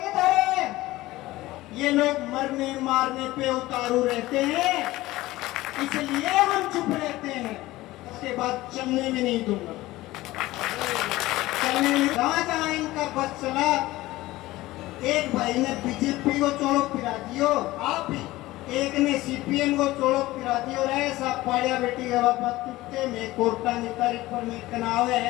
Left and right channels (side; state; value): right; quieter; 17.9 dB